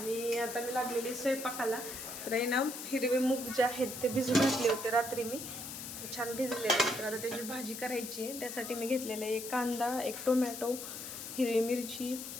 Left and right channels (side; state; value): left; noise; hiss, 8 dB below the sound